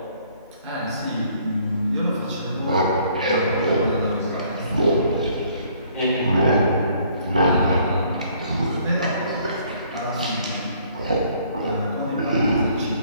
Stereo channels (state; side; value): inverted; both; correlation -0.62